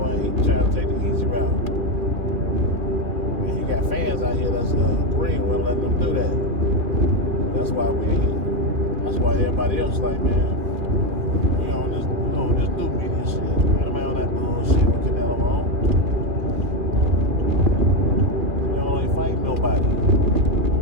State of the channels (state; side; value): late; left; 2.4 ms